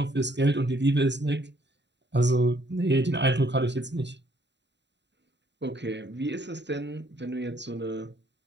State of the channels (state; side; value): late; left; 0.51 ms